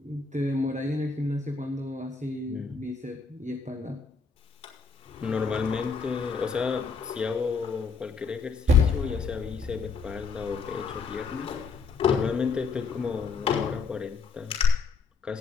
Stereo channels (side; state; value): right; quieter; 4.8 dB